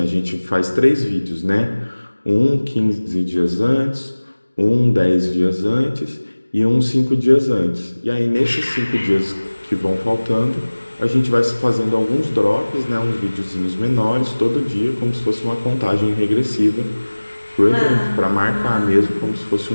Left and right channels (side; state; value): both; inverted; correlation -1.00